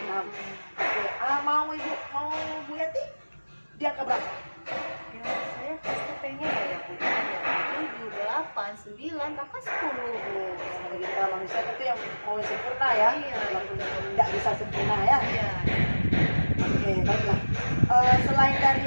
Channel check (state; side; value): inverted; both; correlation -1.00